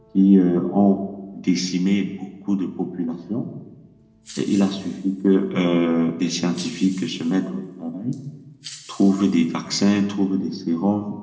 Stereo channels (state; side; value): identical; both; correlation 1.00